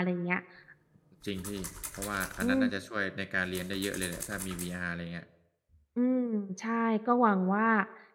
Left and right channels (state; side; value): identical; both; correlation 1.00